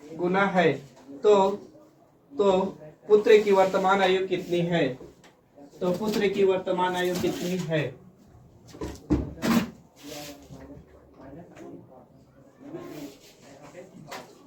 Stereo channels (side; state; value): both; identical; correlation 1.00